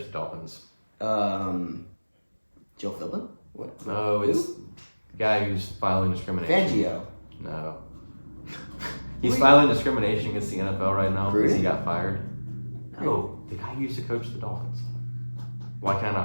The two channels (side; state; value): both; inverted; correlation -1.00